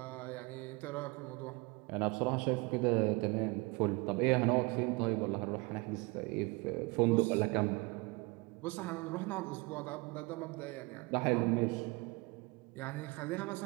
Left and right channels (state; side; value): quieter; left; 26.3 dB